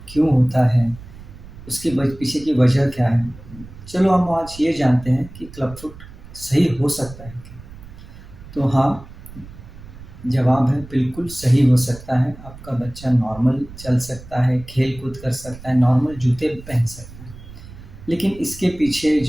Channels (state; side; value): noise; right; rumble, 17 dB below the sound